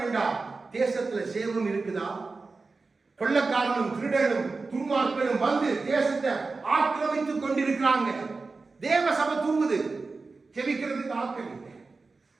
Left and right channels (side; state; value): left; quieter; 4.0 dB